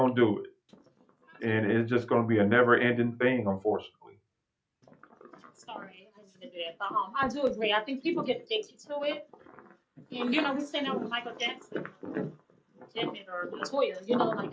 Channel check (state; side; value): identical; both; correlation 1.00